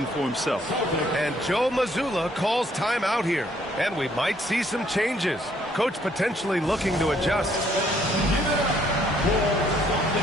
for himself. And Joe Mazzulla calls timeout here. And we might see some changes. Coach potentially looking to adjust.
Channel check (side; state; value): both; normal; correlation 0.66